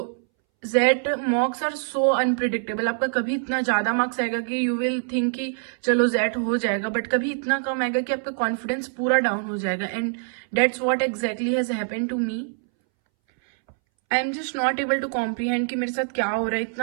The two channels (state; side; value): silent; left; 62 dB below the other